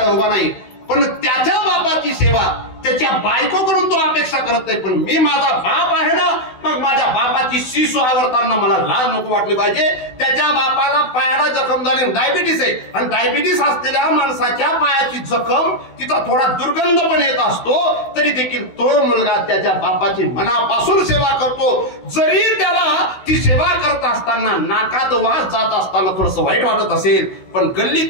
उभा नाही. पण त्याच्या बापाची सेवा त्याच्या बायकोकडून तो अपेक्षा करत नाही. पण मी माझा बाप आहे ना, मग माझ्या बापाची शिसू आवरताना मला लाज नको वाटली पाहिजे. त्याच्या बापाला पायाला जखम झाली, डायबिटीस आहे, आणि डायबिटीस असलेल्या माणसाच्या पायाची जखम तिचा थोडा दुर्गंध पण येत असतो, तरी देखील तो मुलगा त्याच्या बापाची मनापासून सेवा करतो. जरी त्याला ती सेवा करत असताना नाकात वास जात असताना थोडस वाईट वाटत असेल, पण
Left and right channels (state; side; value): late; right; 16 ms